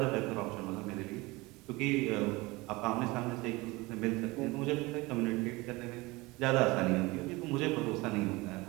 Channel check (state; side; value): quieter; left; 22.6 dB